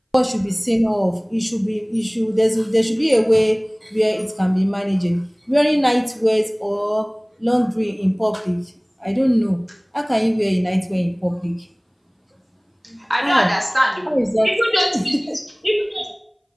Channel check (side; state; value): both; identical; correlation 1.00